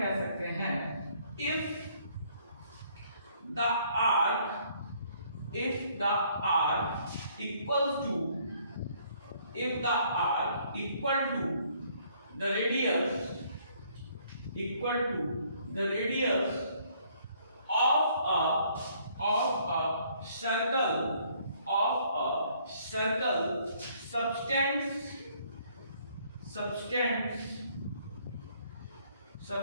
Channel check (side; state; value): both; inverted; correlation -0.64